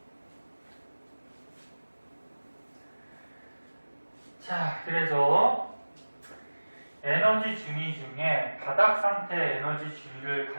자, 그래서 에너지 중위 중에 바닥 상태 에너지 중위를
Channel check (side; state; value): both; inverted; correlation -1.00